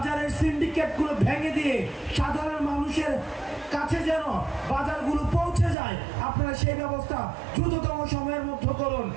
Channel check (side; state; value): left; drops out; at 5.8 s